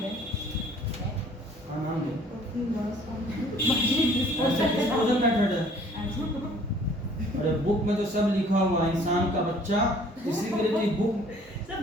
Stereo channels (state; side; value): normal; both; correlation 0.55